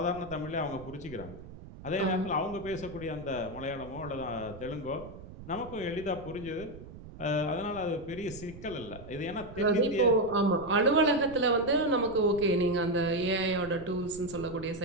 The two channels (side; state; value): right; noise; rumble, 15 dB below the sound